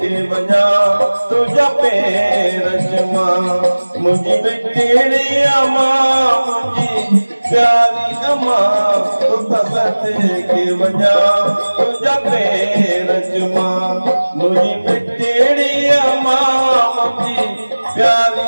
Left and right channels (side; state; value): both; inverted; correlation -1.00